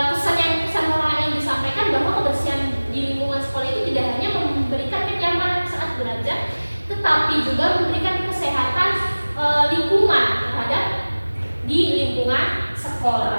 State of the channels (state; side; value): inverted; both; correlation -1.00